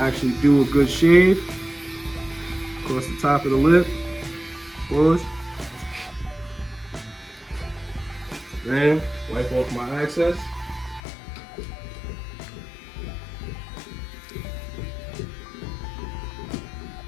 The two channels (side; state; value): right; drops out; at 11.0 s